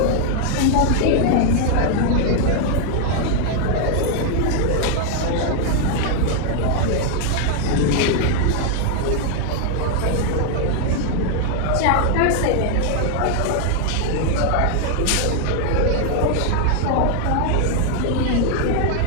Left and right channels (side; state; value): both; different; correlation 0.00